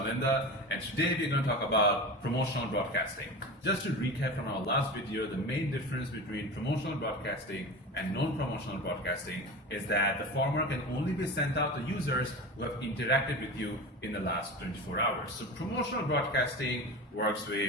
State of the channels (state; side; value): normal; both; correlation 0.29